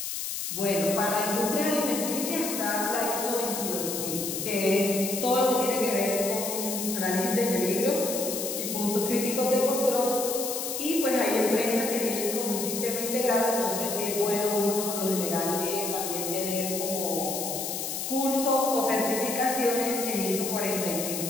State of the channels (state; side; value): noise; left; hiss, 4 dB below the sound